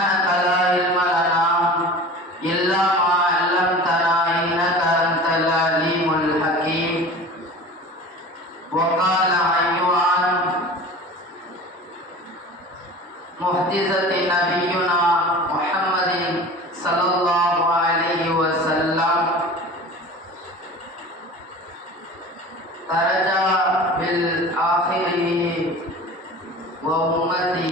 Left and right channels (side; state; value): both; normal; correlation 0.38